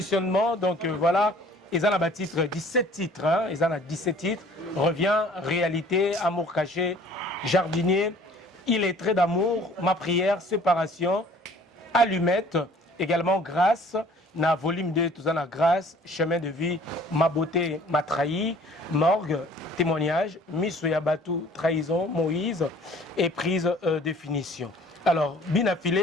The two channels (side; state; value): both; normal; correlation 0.52